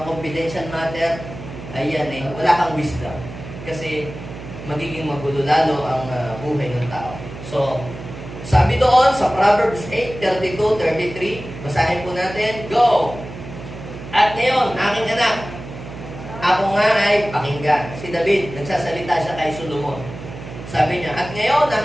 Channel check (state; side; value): noise; right; hum, 12 dB below the sound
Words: confidential matter, ayan wala kang wisdom. Kasi magiging magulo lalo ang buhay ng tao. So, sabi doon sa Proverbs 8:32-33, basahin po natin, go! At ngayon, aking anak, ako nga ay pakinggan. Si David, nagsasalita siya kay Solomon. Sabi niya, at ngayon,